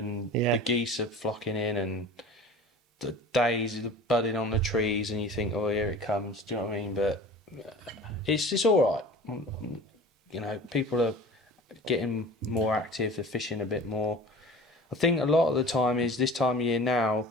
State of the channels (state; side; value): normal; both; correlation 0.40